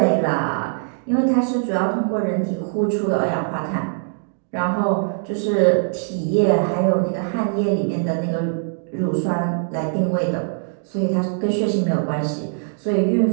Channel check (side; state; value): left; silent; digital silence